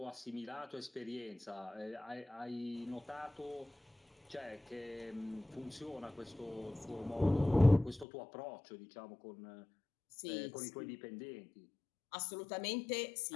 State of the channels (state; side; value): drops out; right; at 8.1 s